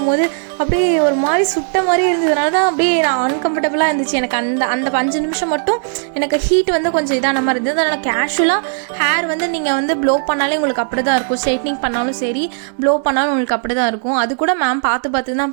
அப்படியே ஒரு மாதிரி சுட்ட மாதிரி இருந்ததுனால தான் அப்படியே நான் அன்கம்ஃபர்டபுளாக இருந்துச்சு எனக்கு. அந்த அந்த 5 நிமிஷம் மட்டும் எனக்கு ஹீட் வந்து கொஞ்சம் இதான மாதிரி இருந்தது. அதனால் கேஷுவலாக ஹேர் வந்து நீங்கள் வந்து ப்ளோ பண்ணாலே உங்களுக்கு அப்படி தான் இருக்கும். ஸ்ட்ரைட்னிங் பண்ணாலும் சரி, ப்ளோ பண்ணாலும் உங்களுக்கு அப்படி தான் இருக்கும். அது கூட மேம் பார்த்து பார்த்து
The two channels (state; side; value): silent; left; digital silence